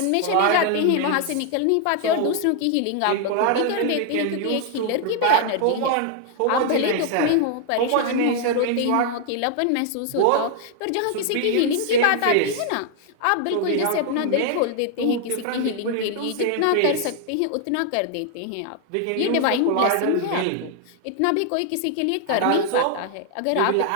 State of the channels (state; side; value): different; both; correlation 0.00